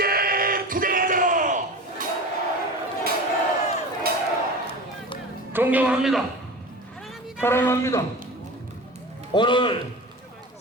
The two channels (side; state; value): both; normal; correlation 0.32